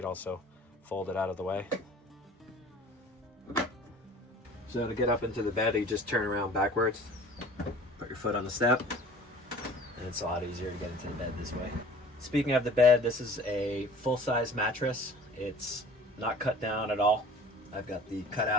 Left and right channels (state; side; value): normal; both; correlation 0.46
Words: also fold it out of the way. So to get up into the bed, you just turn around backwards, put your foot on the step, and it's a lot easier to get into the bed this way. Speaking of the bed, this is a full-size mattress. It's not cut down at all. I've got the